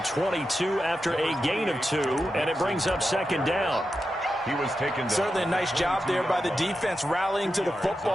after a gain of 2, and it brings up 2nd down. He was taken down. Certainly a nice job there by the defense rallying to the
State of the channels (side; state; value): both; normal; correlation 0.89